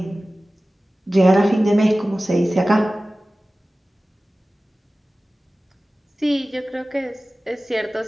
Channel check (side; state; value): both; normal; correlation 0.97